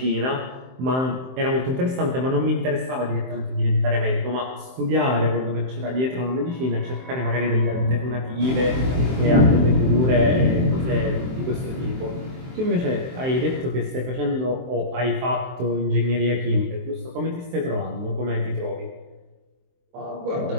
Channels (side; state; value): left; late; 23 ms